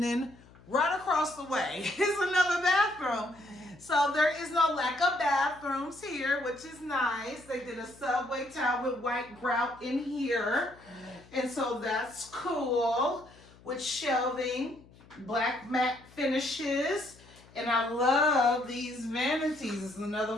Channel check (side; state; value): left; noise; hum, 24 dB below the sound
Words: then right across the way is another bathroom. So there is no lack of bathrooms here, which is nice. They did a subway tile with white grout in here, and so that's cool. With shelving, black matte finishes, and I love these vanities. This is